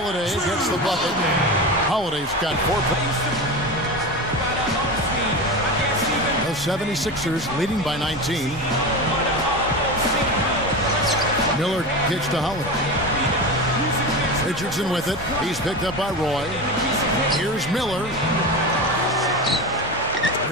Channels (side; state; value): both; normal; correlation 0.24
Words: gets the bucket. Holiday's got 4 points. The 76ers leading by 19. Miller kicks to Holiday. Richardson with it. He's picked up by Roy. Here's Miller.